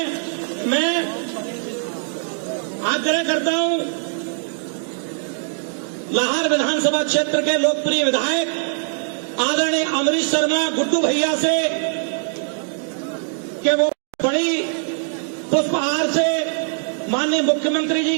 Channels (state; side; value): silent; left; 57 dB below the other